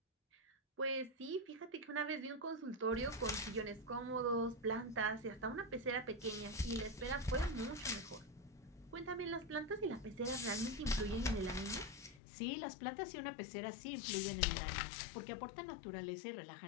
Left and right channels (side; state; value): right; drops out; at 12.2 s